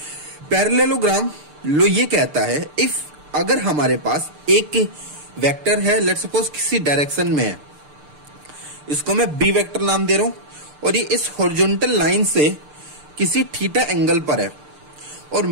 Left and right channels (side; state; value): left; late; 6.7 ms